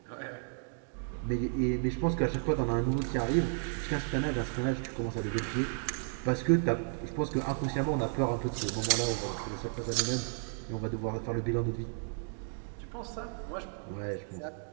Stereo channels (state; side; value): silent; left; 56 dB below the other